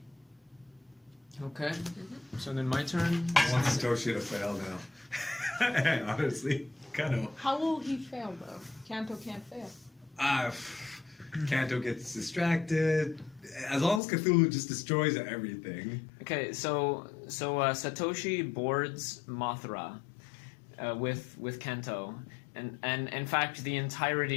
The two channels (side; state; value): right; drops out; at 14.0 s